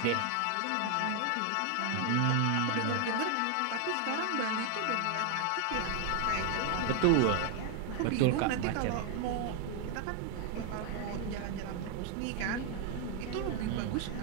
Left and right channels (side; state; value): both; different; correlation 0.00